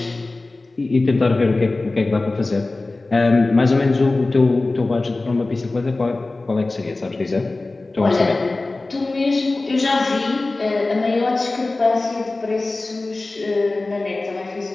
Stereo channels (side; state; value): right; quieter; 3.2 dB